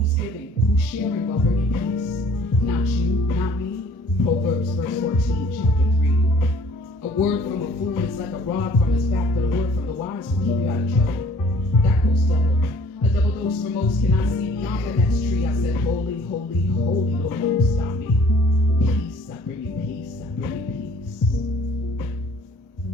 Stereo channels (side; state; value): both; normal; correlation 0.55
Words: giving? Who's sharing while bringing peace? Not you, not me. Proverbs verse 14, chapter 3. A word from a fool is like a rod from his back, but a word from the wise will keep you out of trouble. That goes double. A double dose for most cannot see beyond the next tree. I said, holy, holy, holy, Lord, don't stop me. Peace, I bring you peace, I bring you peace.